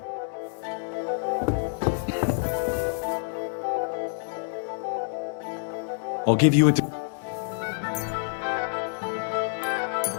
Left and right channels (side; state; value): right; silent; digital silence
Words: I'll give you a...